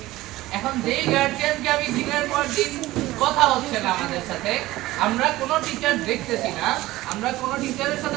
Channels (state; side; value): quieter; left; 17.3 dB